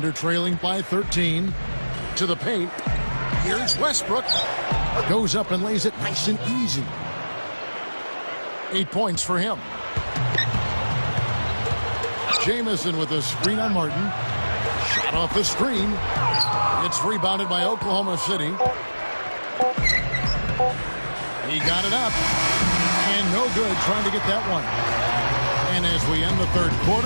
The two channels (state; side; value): inverted; both; correlation -1.00